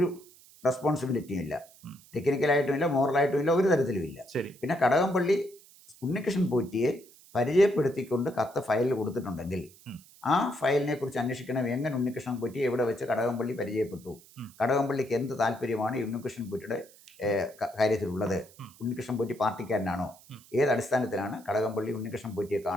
റെസ്പോൺസിബിലിറ്റിയും ഇല്ല, ടെക്നിക്കലായിട്ടും ഇല്ല, മോറലായിട്ടും ഇല്ല, ഒരു തരത്തിലും ഇല്ല. പിന്നെ കടകംപള്ളി ഉണ്ണികൃഷ്ണൻ പോറ്റിയെ പരിചയപ്പെടുത്തിക്കൊണ്ട് കത്ത് ഫയലിൽ കൊടുത്തിട്ടുണ്ടെങ്കിൽ ആ ഫയലിനെ കുറിച്ച് അന്വേഷിക്കണം. എങ്ങനെ ഉണ്ണികൃഷ്ണൻ പോറ്റിയെ എവിടെ വെച്ച് കടകംപള്ളി പരിചയപ്പെട്ടു, കടകംപള്ളിക്ക് എന്ത് താല്പര്യമാണ് ഉണ്ണികൃഷ്ണൻ പോറ്റിയുടെ കാര്യത്തിലുള്ളത്, ഉണ്ണികൃഷ്ണൻ പോറ്റി പാർട്ടിക്കാരനാണോ, ഏത് അടിസ്ഥാനത്തിലാണ് കടകംപള്ളി ഉണ്ണികൃഷ്ണൻ പോറ്റിയെ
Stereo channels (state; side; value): noise; right; hiss, 24 dB below the sound